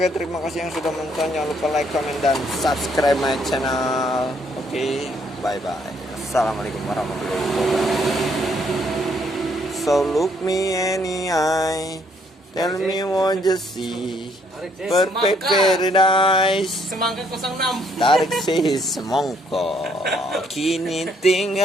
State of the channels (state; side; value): normal; both; correlation 0.68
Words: terima kasih yang sudah menonton. Jangan lupa like, comment, dan subscribe my channel. Oke, bye bye. Assalamualaikum warahmatullahi wabarakatuh. So look me any eye, tell me what you see. Perfect paradise. Semangka 06. Tarik si semongko, kini